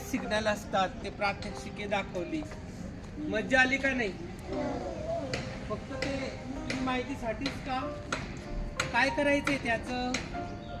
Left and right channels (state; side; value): identical; both; correlation 1.00